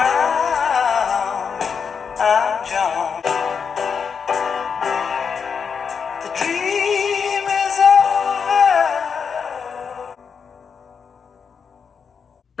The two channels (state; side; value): quieter; right; 6.3 dB